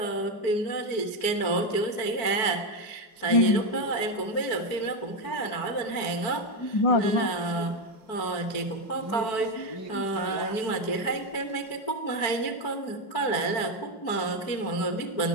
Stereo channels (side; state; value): right; late; 4.5 ms